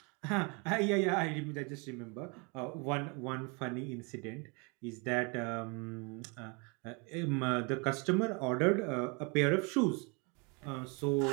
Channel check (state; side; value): quieter; left; 31.6 dB